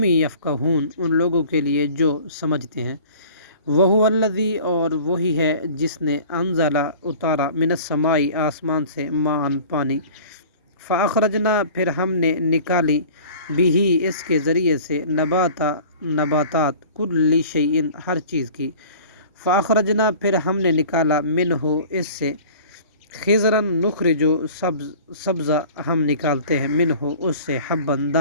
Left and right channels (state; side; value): inverted; both; correlation -0.44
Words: یفقہون ان لوگوں کے لیے جو سمجھتے ہیں وہو الذی اور وہی ہے جس نے انزلہ اتارا من السماء آسمان سے ماء پانی فاخرجنا پھر ہم نے نکالی بھی اس کے ذریعے سے نباتات کل شیء ہر چیز کی فاخرجنا پھر ہم نے نکالا منہ اس سے خضرا نخرجو سبزہ ہم نکالتے ہیں منہ اس سے حبن